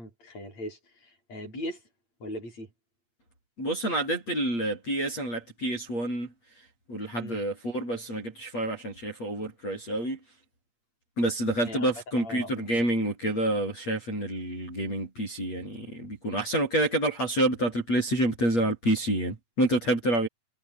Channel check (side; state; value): right; late; 8.6 ms